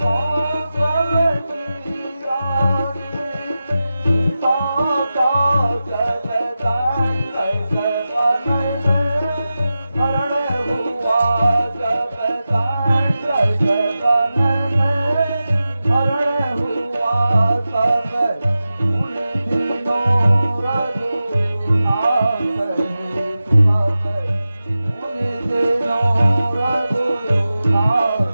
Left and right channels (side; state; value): both; inverted; correlation -0.93